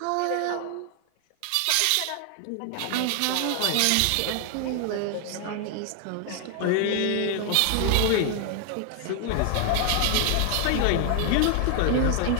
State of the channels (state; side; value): different; both; correlation 0.00